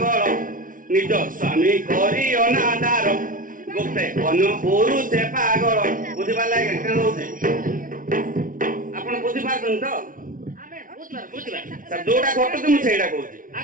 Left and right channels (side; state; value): left; late; 0.39 ms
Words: ନିଜ ସ୍ୱାମୀ କରି ଅନାଦାର ଗୋଟେ ଅନ୍ୟ ପୁରୁଷ ପାଗଳ ବୁଝିପାରିଲେ ଆଜ୍ଞା କେন ହଉଛି ଆପଣ ବୁଝିପାରୁଛନ୍ତି ତ ଯୋଉଟା ଘଟୁଛି ମୁଁ ସେଇଟା କହୁଛି